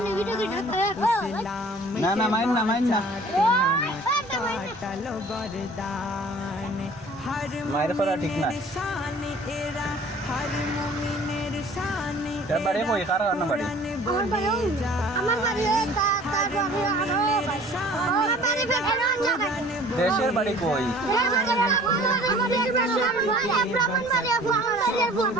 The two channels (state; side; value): normal; both; correlation 0.49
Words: না না মাইন না কাটালো গরদান হর মায়ের করা ঠিক না শান এরা হর মুমিনের শান তার বাড়ি কই কার না বাড়ি আমার বাড়ি তার বাড়ি আরো আমার বাড়ি বেখানা জায়গায় দেশের বাড়ি কই